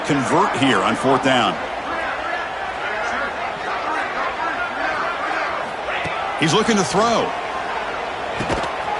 here on fourth down. He's looking to throw.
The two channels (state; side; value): identical; both; correlation 1.00